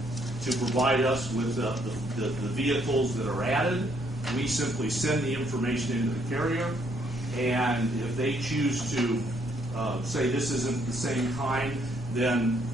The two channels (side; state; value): both; normal; correlation 0.70